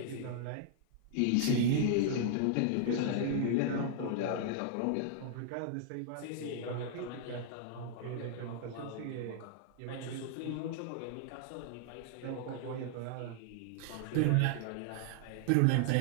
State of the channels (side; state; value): both; different; correlation -0.01